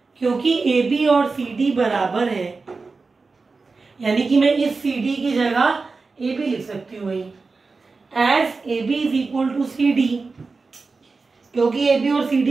क्योंकि A B और C D बराबर है यानी कि मैं इस सी डी की जगह ए बी लिख सकती हूँ वही, as A B is equal to C D. क्योंकि ए बी और सी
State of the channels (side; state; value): left; quieter; 4.1 dB